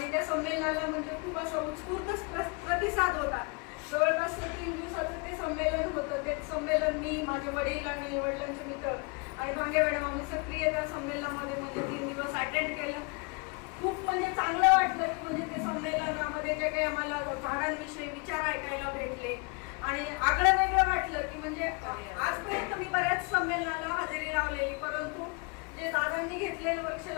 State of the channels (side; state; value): right; quieter; 32.6 dB